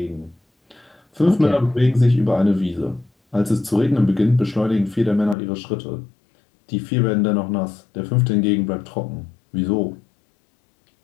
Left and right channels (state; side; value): drops out; right; at 5.4 s